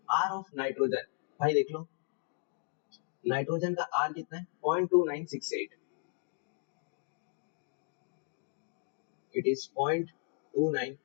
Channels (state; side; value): silent; right; 54 dB below the other